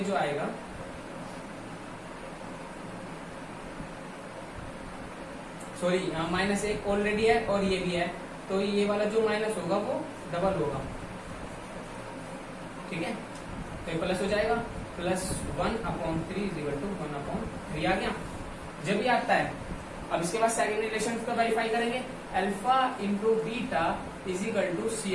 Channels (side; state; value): both; identical; correlation 1.00